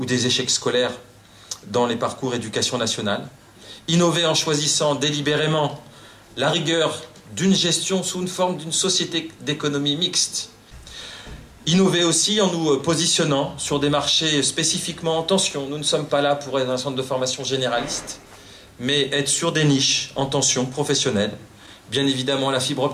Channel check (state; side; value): identical; both; correlation 1.00